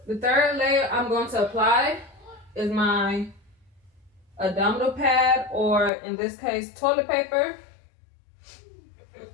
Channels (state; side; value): drops out; right; at 5.9 s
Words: The third layer I'm going to apply is my abdominal pad, or in this case, toilet paper.